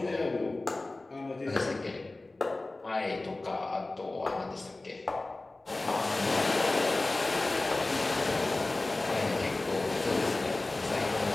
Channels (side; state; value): right; quieter; 3.0 dB